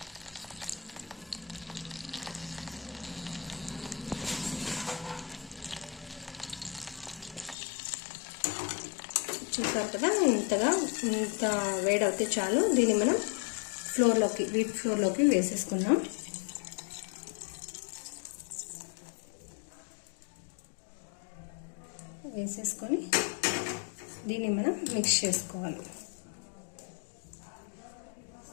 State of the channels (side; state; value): right; drops out; at 7.6 s